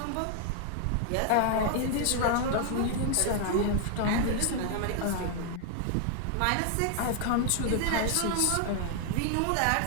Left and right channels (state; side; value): different; both; correlation 0.00